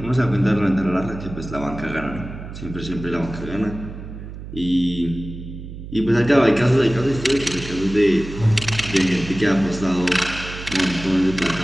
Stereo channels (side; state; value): right; noise; hum, 11 dB below the sound